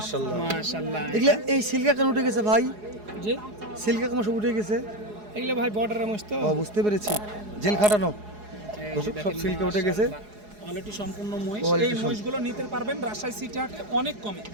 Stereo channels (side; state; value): left; late; 4.8 ms